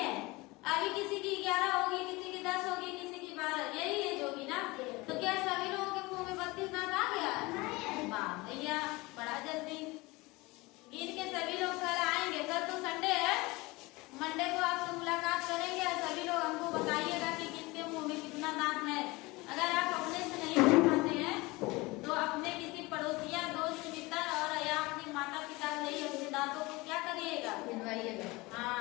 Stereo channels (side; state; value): right; quieter; 22.8 dB